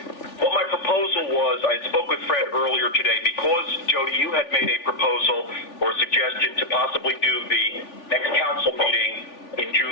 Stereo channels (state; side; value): late; right; 3.4 ms